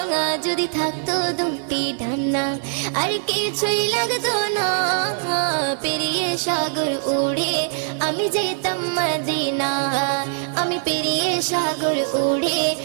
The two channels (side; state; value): left; silent; digital silence